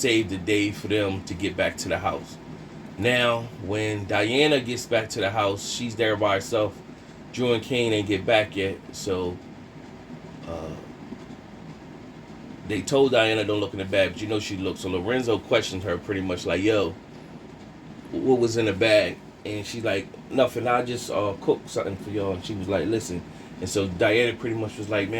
the day for them to get back to the house. Now, when Diana gets back to the house, she's there by herself. Drew and Kane ain't get back yet, so they told Diana don't look in the bag, but she looked. So Lorenzo questioned her pretty much like, yo, what was in the bag? And she's like, nothing, I just cooked something for y'all. And she was like, listen. And so Diana pretty much was like,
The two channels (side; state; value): both; identical; correlation 1.00